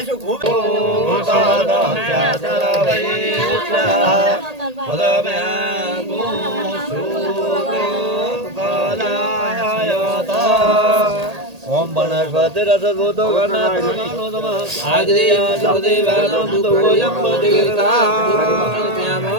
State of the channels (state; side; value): late; left; 1.8 ms